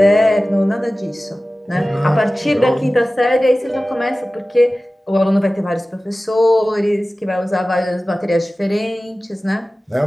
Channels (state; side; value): normal; both; correlation 0.96